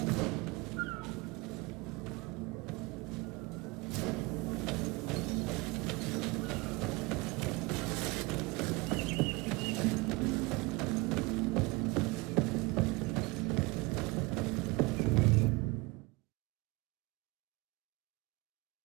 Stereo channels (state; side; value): quieter; left; 24.9 dB